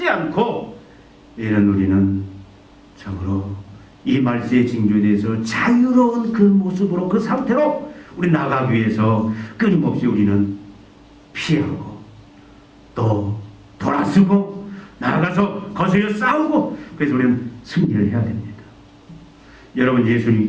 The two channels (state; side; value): identical; both; correlation 1.00